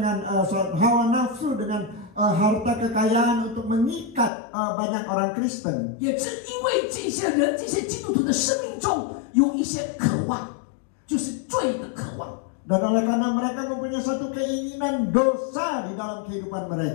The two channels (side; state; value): right; drops out; at 4.3 s